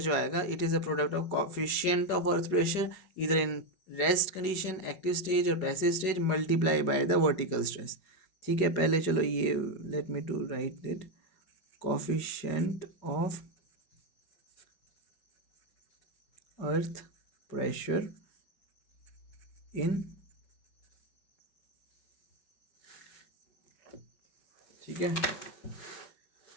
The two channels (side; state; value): right; late; 5.4 ms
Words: आएगा it is a product of coefficient of earth pressure इधर in rest condition, active stage और passive stage multiply by the vertical stress. ठीक है, पहले चलो ये let me to write it, coefficient of earth pressure in, ठीक है,